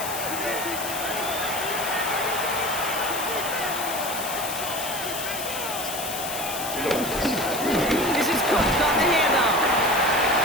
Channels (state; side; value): noise; left; hiss, 6 dB below the sound